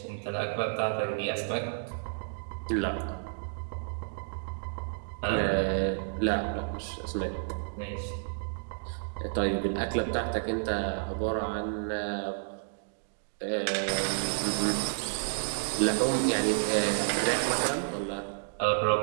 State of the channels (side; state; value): left; silent; digital silence